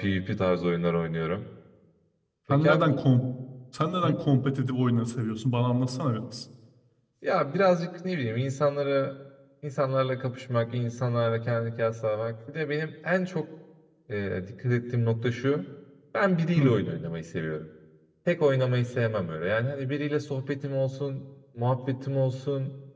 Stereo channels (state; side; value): identical; both; correlation 1.00